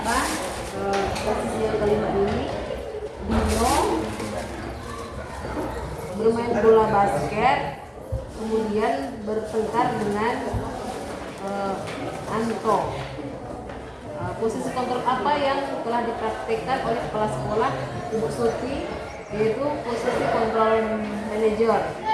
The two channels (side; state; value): both; identical; correlation 1.00